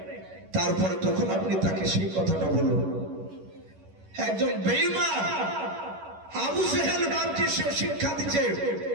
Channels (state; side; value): late; left; 11 ms